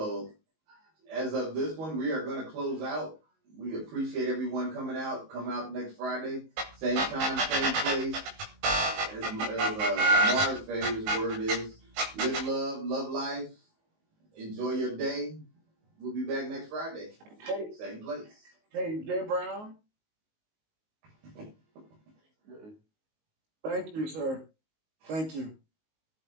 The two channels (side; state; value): left; late; 19 ms